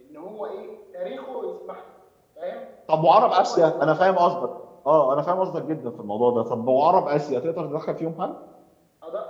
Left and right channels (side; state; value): both; identical; correlation 1.00